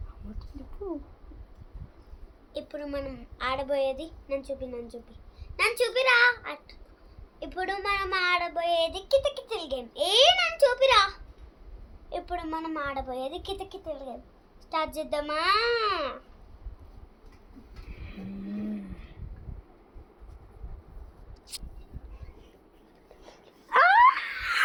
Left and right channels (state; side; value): identical; both; correlation 1.00